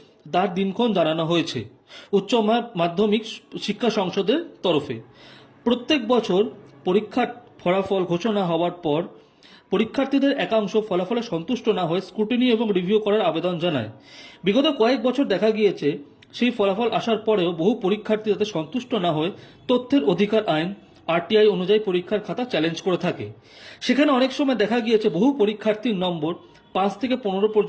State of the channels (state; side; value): identical; both; correlation 1.00